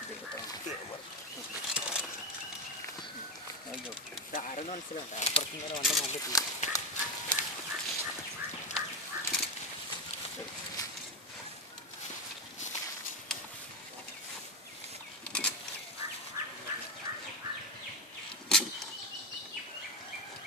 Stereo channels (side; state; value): both; normal; correlation 0.13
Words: ആരെന്ന് മനസ്സിലുണ്ട് അപ്പുറത്തും നേരെ വന്ന നല്ല